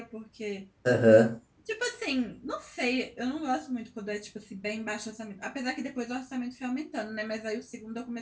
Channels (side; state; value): both; identical; correlation 1.00